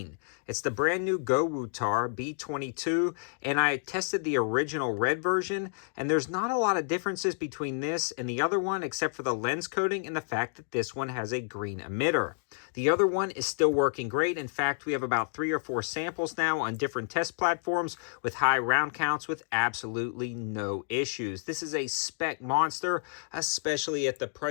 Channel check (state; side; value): silent; right; digital silence